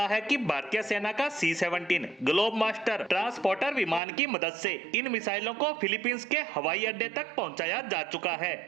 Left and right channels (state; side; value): drops out; left; at 4.0 s